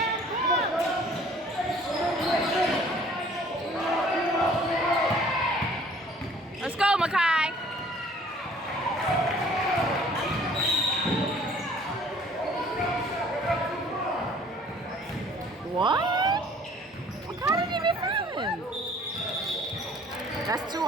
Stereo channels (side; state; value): both; normal; correlation 0.54